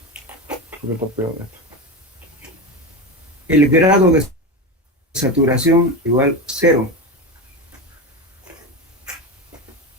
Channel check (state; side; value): normal; both; correlation 0.20